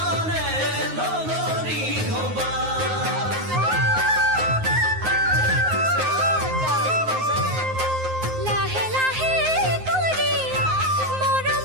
লগৰী হবা লাহে লাহে কৰি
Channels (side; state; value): left; late; 9.5 ms